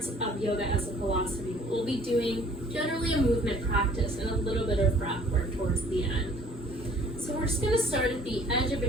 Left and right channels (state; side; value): normal; both; correlation 0.55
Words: of yoga as a philosophy. We'll be doing generally a movement practice and a little bit of breath work towards the end. So we're just going to start at the edge of